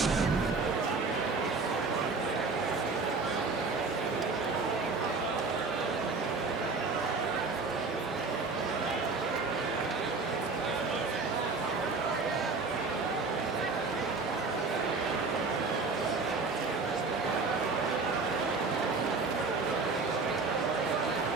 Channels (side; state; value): left; quieter; 4.1 dB